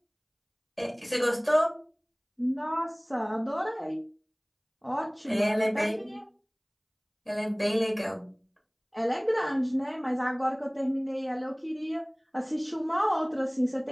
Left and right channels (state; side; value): identical; both; correlation 1.00